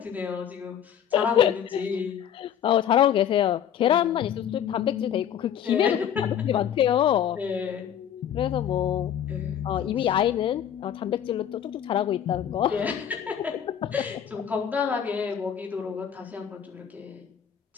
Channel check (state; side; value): quieter; right; 9.3 dB